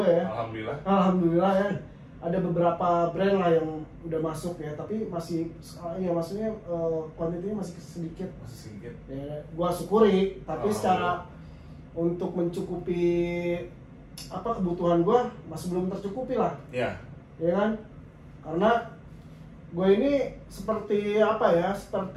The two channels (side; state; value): both; identical; correlation 1.00